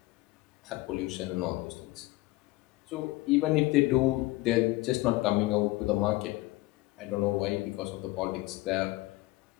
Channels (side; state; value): right; quieter; 19.6 dB